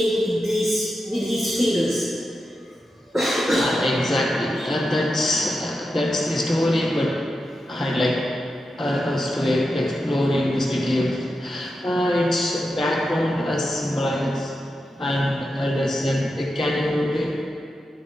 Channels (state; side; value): normal; both; correlation 0.89